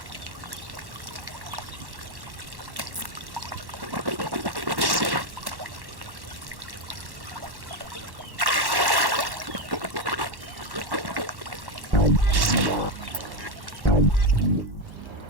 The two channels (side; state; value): left; late; 1.1 ms